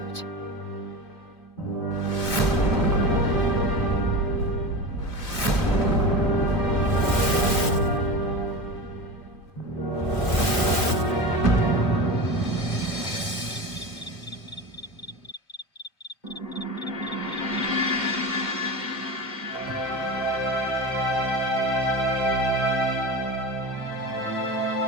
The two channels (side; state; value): right; late; 2.2 ms